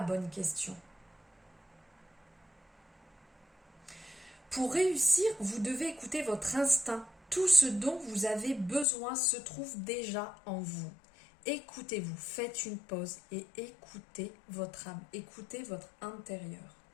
bonne question. Pour réussir, vous devez écouter votre instinct. Tout ce dont vous avez besoin se trouve déjà en vous. Écoutez-vous, faites une pause et écoutez votre âme, écoutez votre intérieur.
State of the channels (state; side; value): drops out; right; at 8.8 s